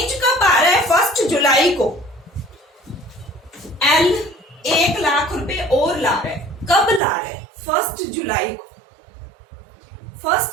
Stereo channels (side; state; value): left; drops out; at 7.0 s